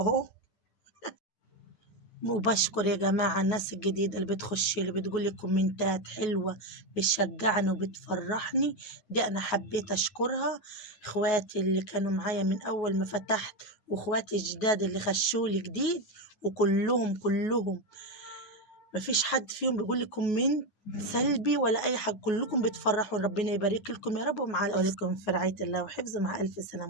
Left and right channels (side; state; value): right; late; 9.4 ms